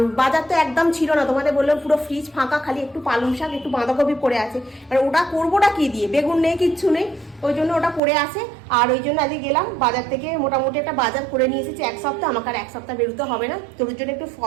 বাজার তো একদম ছিল না, তোমাদের বললাম পুরো ফ্রিজ ফাঁকা, খালি একটু পালং শাক একটু বাঁধাকপি পড়ে আছে। আর ওটা করবোটা কি দিয়ে, বেগুন নেই, কিচ্ছু নেই, ওই জন্য ওটা পড়ে আছে। আর ওই জন্য আজকে গেলাম বাজার থেকে, মোটামুটি একটা বাজার করে নিয়ে এসেছি 1 সপ্তাহ। আমাকে আর 1 সপ্তাহ বেরোতে হবে না, তোর জন্য একটু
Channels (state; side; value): drops out; left; at 8.0 s